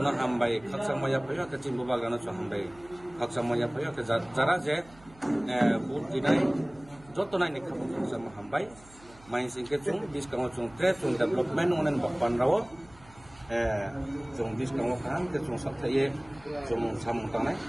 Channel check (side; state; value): right; noise; hum, 24 dB below the sound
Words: hambai khaksang maya phayo ke chini Bubagra no chung hambai khaksang maya phayo ke jara je vote dinai jotonai ni khabong khaksang hambai main singke chung biskango chung trade chung development onen bakpan rawo chung biskango kan ke chung sapthaye chung samung tangnai